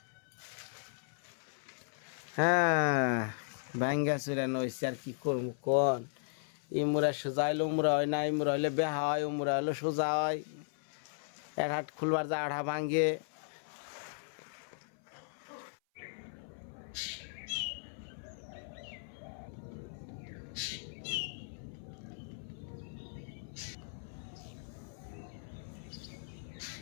হ্যাঁ ভাঙ্গা চুরা নইছে আর কি করবো কোন ইমুরা সোজা হইলে উমরা হয় না ইমুরা হইলে বেহা হয় উমরা হইলে সোজা হয় এক হাট খুলবার যা আড়া ভাঙ্গে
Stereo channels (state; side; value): silent; right; 53 dB below the other